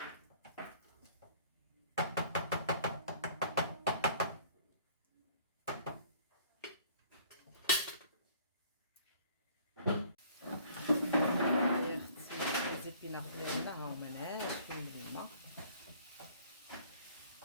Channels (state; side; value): inverted; both; correlation -0.55